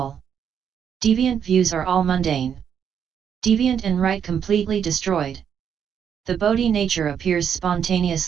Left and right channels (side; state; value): left; quieter; 8.1 dB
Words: Deviant views are all mundane. Deviant and right completely destroyed. The Bodhi nature appears